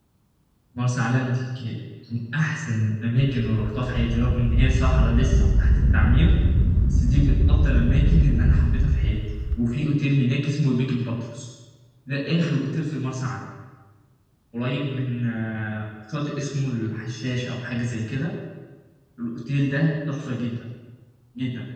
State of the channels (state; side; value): identical; both; correlation 1.00